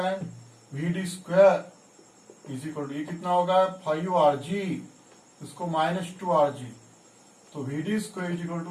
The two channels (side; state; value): both; identical; correlation 1.00